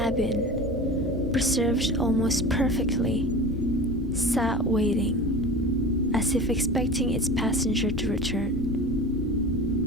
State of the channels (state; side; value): normal; both; correlation 0.34